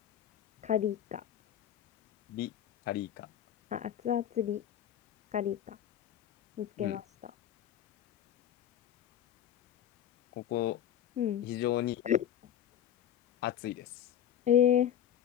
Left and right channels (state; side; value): quieter; right; 10.4 dB